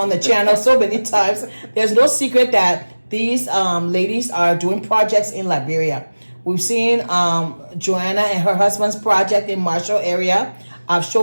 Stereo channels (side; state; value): both; inverted; correlation -1.00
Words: the channel so many times, there's no secret that these ladies are doing projects in Liberia. We've seen Joanna and her husband's project in Marshall area. I've